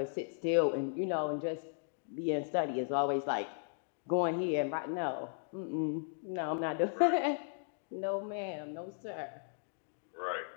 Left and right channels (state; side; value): silent; right; digital silence